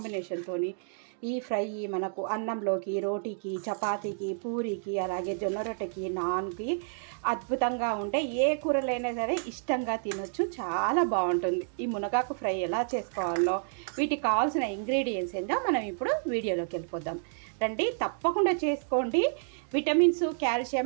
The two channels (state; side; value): silent; left; digital silence